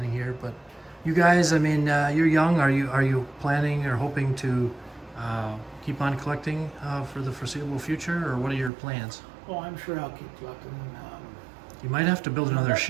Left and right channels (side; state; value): left; drops out; at 8.7 s